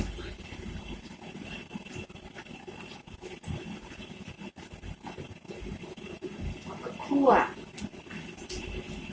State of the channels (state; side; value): identical; both; correlation 1.00